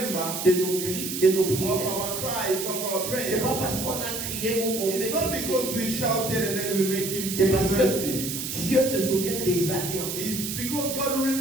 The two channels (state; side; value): noise; right; hiss, 5 dB below the sound